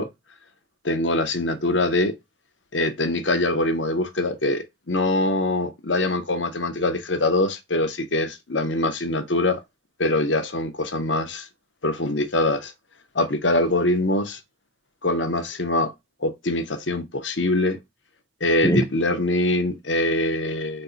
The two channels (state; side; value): normal; both; correlation 0.04